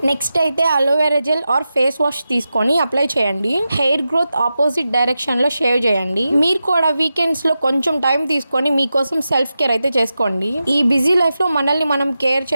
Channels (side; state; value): both; inverted; correlation -0.91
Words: నెక్స్ట్ అయితే aloe vera gel are face wash తీసుకొని అప్లై చేయండి. హెయిర్ గ్రోత్ ఆపోజిట్ డైరెక్షన్ లో షేవ్ చేయండి. మీరు కూడా వీకెండ్స్ లో కొంచెం టైం తీసుకొని మీకోసం సెల్ఫ్ కేర్ అయితే చేసుకోండి. ఈ బిజీ లైఫ్ లో మనల్ని మనం కేర్